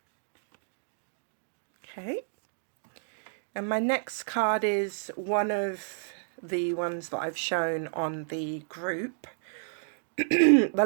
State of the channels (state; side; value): silent; left; digital silence